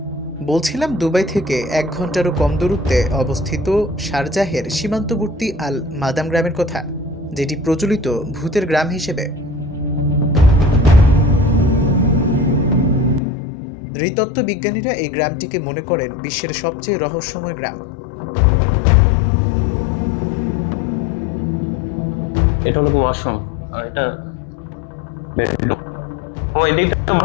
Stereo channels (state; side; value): drops out; right; at 13.2 s